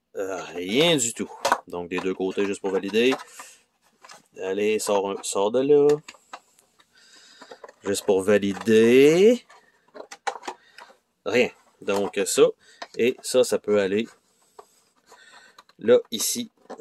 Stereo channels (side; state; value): both; identical; correlation 1.00